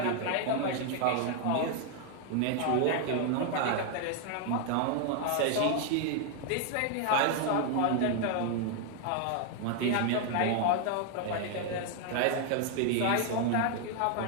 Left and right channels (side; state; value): both; different; correlation 0.00